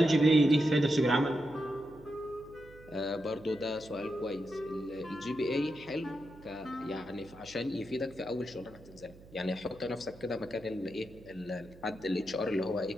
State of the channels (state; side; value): noise; right; hum, 21 dB below the sound